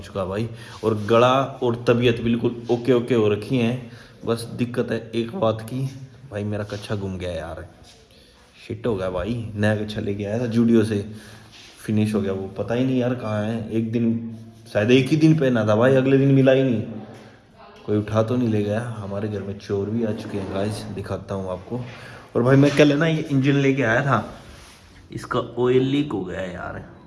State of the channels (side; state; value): both; identical; correlation 1.00